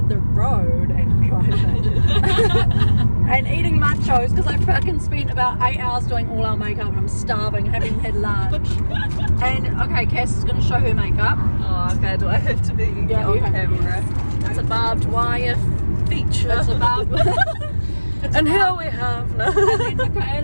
the road and driving. And eating nachos because I fucking spent about 8 hours doing all our makeup and I'm starving, haven't had lunch. And okay, Cass is going to show her makeup. Oh, okay. Do I have to be on camera? It's a barbed wire feature. It's a barbed wire. And here we have and then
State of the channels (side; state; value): both; inverted; correlation -1.00